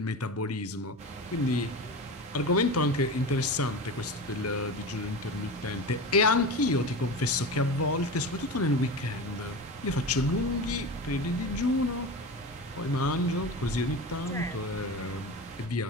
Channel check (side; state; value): both; normal; correlation 0.27